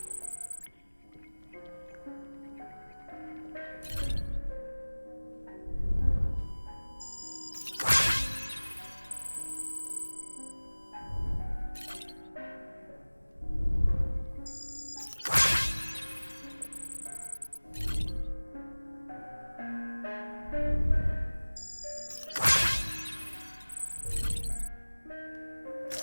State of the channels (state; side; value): inverted; both; correlation -1.00